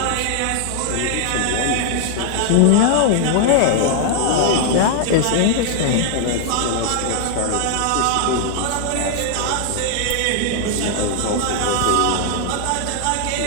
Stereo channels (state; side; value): different; both; correlation 0.00